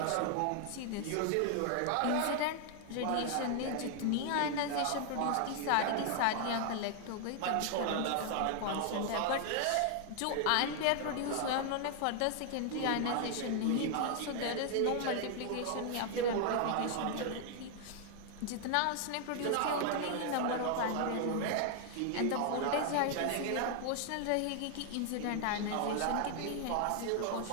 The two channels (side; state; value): both; different; correlation 0.00